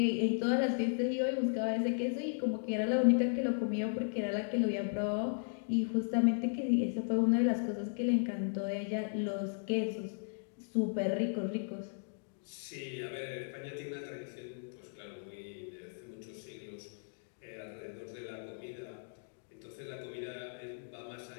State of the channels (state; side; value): silent; right; digital silence